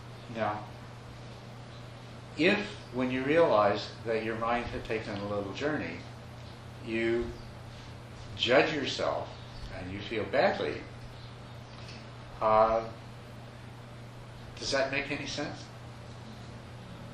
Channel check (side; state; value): both; identical; correlation 1.00